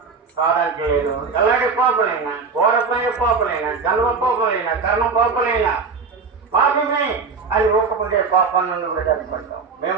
కాదని చేయదు. ఎలాంటి పాపలైనా, ఘోరమైన పాపలైనా, జన్మ పాపలైనా, కర్మ పాపలైనా పాపమే అని ఒప్పుకుంటే పాపం నుండి విడుదలపడతాం. మేము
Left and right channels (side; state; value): left; quieter; 4.9 dB